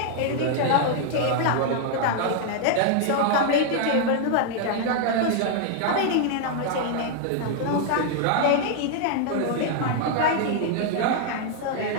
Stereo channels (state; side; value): different; both; correlation 0.00